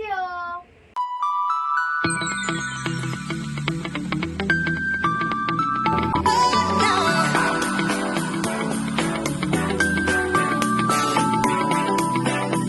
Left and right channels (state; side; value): identical; both; correlation 1.00